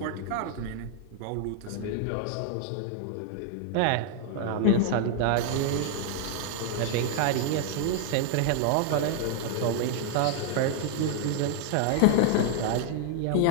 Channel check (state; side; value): different; both; correlation 0.00